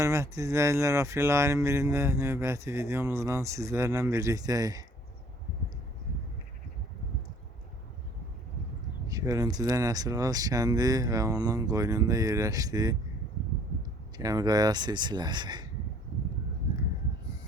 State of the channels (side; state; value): both; normal; correlation 0.57